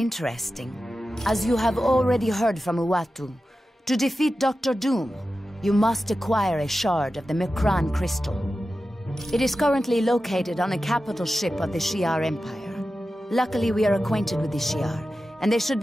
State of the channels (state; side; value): normal; both; correlation 0.93